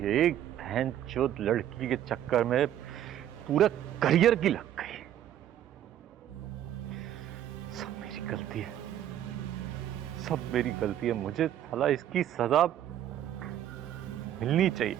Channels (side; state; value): left; quieter; 11.4 dB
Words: है। एक बहनचोद लड़की के चक्कर में पूरा करियर की लग गई। सब मेरी गलती है, सब मेरी गलती है। मुझे साला इसकी सजा मिलनी चाहिए,